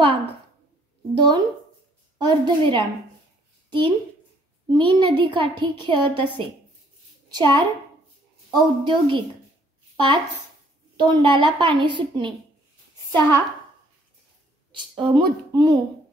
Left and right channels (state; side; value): normal; both; correlation 0.63